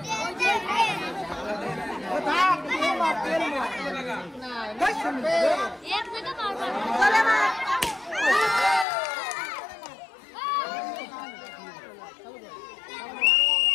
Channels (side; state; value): right; drops out; at 8.8 s